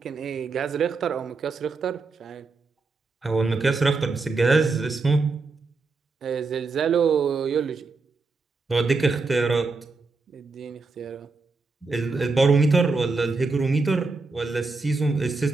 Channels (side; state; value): left; quieter; 3.9 dB